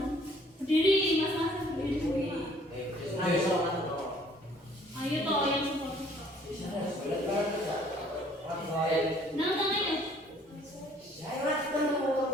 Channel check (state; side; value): normal; both; correlation 0.58